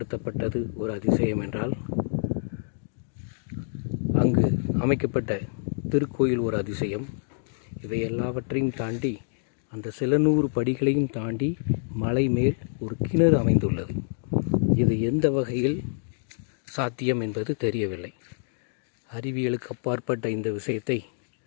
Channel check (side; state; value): right; silent; digital silence